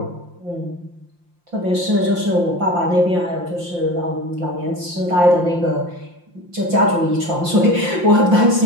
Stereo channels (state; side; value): late; left; 5.7 ms